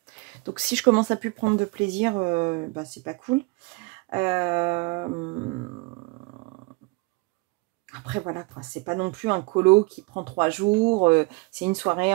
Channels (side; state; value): left; quieter; 26.9 dB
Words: Donc, si je commence à plus prendre de plaisir, bah, c'est pas cool. Après, voilà, c'est pas non plus un colo qui prend 3 jours. C'est une soirée